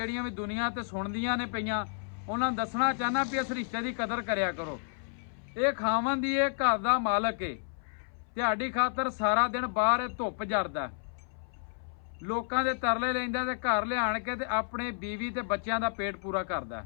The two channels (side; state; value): right; silent; 57 dB below the other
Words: भी दुनिया ते सुणदियां ने पईयां, उन्होंने दसना चाहना भी इस रिश्ते की कदर करया करो। ये खावन दी ये घर का मालक है, तुहाडी खातर सारा दिन बाहर धुप जरदा, लोगों के तरले लैंदा ते घर लिया के ते अपने बीवी ते बच्चों का पेट पूरा करदा।